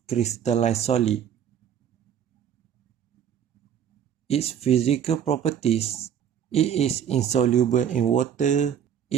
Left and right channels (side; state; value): left; quieter; 8.9 dB